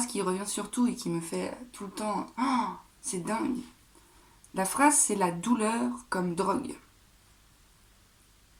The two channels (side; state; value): both; identical; correlation 1.00